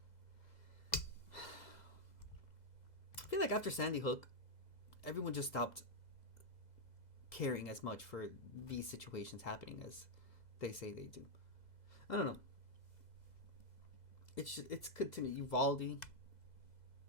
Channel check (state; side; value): late; right; 2.0 ms